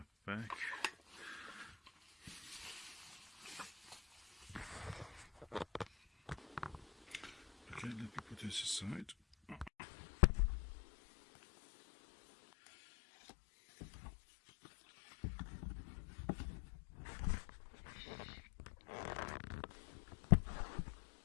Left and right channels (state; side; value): drops out; right; at 9.7 s